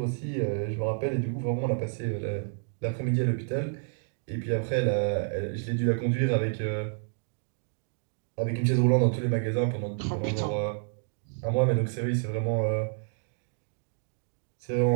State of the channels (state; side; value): silent; left; digital silence